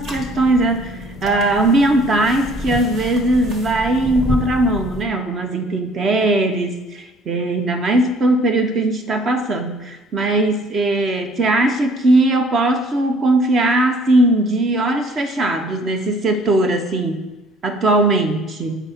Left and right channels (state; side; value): normal; both; correlation 0.57